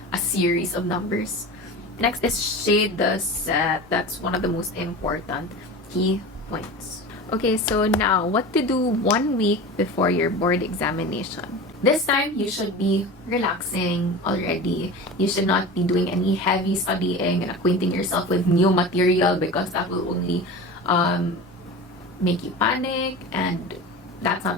a series of numbers. Next is shade the set. That's one of the most important key points. Okay, so now what to do 1 week before your board examination. This time, you should be relaxing already. You should not be doing any heavy studying and acquainting yourself with new material because that will only make you panic, and that's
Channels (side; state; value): both; normal; correlation 0.32